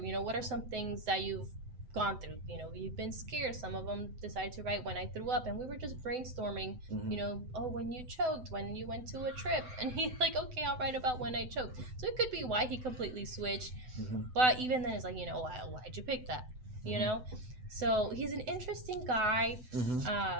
You know, what are some things that you've gone through? You know, you've been scared. Some of them decided to write when I threw up, and we were just brainstorming. You know, when you choked, when you went to a trip, and he's like, okay, I'll write about when I choked. So it could be why he completely switched. But even then, it's like, you know, why'd you pick that? You know, so he's an interesting guy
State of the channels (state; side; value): late; left; 7.9 ms